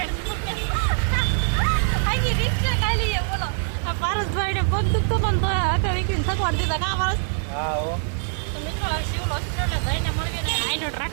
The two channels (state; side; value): silent; left; digital silence